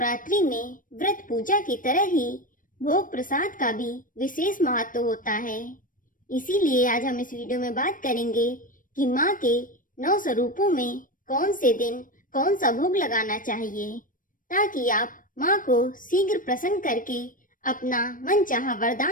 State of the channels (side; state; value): right; late; 0.39 ms